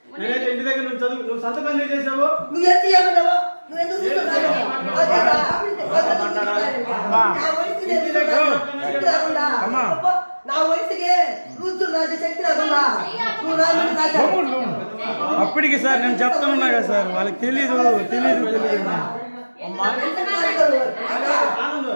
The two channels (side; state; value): both; inverted; correlation -1.00